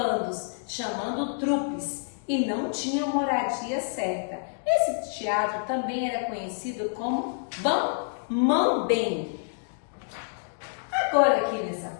chamando trupes, e não tinham moradia certa. Esse teatro também era conhecido como mambembe. Agora aqui nessa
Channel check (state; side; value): silent; right; digital silence